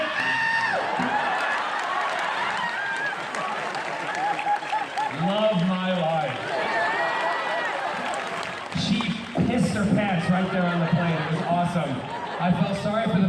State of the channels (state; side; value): identical; both; correlation 1.00